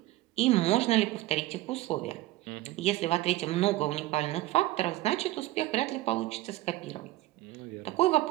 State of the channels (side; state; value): left; quieter; 17.1 dB